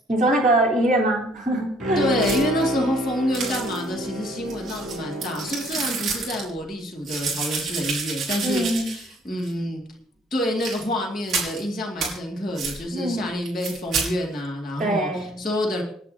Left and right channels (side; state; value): both; normal; correlation 0.61